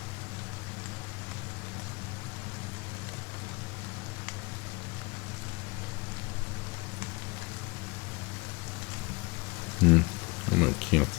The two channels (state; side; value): quieter; right; 26.8 dB